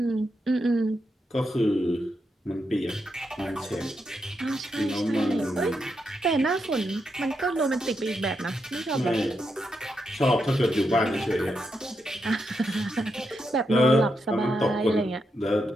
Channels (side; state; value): both; normal; correlation 0.83